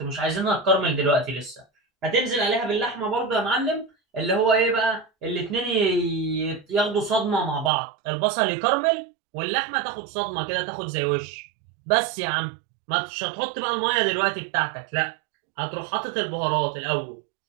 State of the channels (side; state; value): left; drops out; at 7.7 s